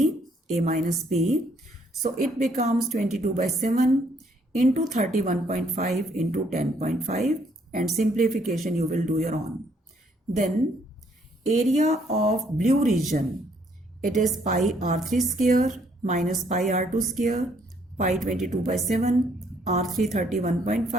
a minus b. So it becomes 22 by 7 into 31.5 into 10.5, and simplification you will do your own. Then area of blue region, it is pi r3 square minus pi r2 square, pi 22 by 7, r3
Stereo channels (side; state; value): both; normal; correlation 0.68